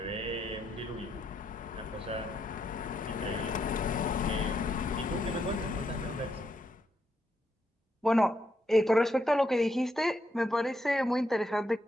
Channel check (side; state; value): both; normal; correlation 0.79